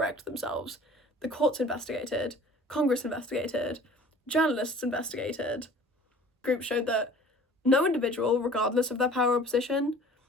themselves. The courts investigated, Congress investigated, journalists investigated. Groups showed that no individual, regardless of their power or position,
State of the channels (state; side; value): normal; both; correlation 0.47